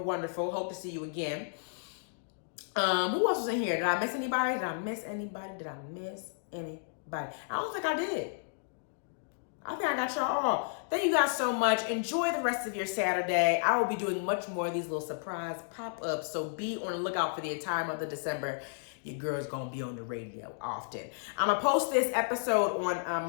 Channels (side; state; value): right; silent; digital silence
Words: Hope to see you again. Who else was in here? Did I miss anybody? I don't think I did. I think I got y'all all. Thank you guys so much. Enjoy the rest of your Saturday. I will be doing much more of these little surprise pop-ups, so be on the lookout for the entire month of December. Your girl's gonna be on the radio often. I'm gonna post this episode on